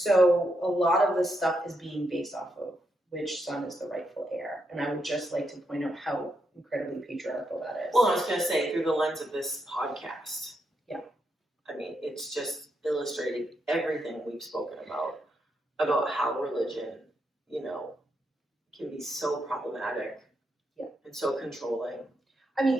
a lot of this stuff is being based off of which son is the rightful heir. And I would just like to point out how incredibly patriarchal that is. Well, I was going to say, through the lens of this podcast. Yeah. I mean, it's just illustrating everything we've spoken about how religion, can be so problematic and so controlling. I mean,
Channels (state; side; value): normal; both; correlation 0.81